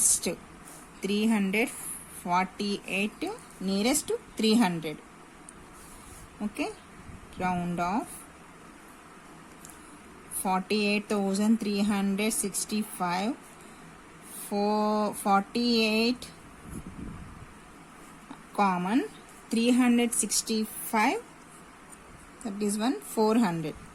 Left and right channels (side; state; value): both; identical; correlation 1.00